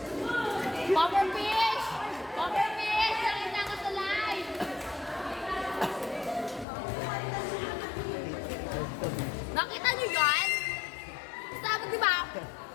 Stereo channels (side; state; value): right; drops out; at 6.7 s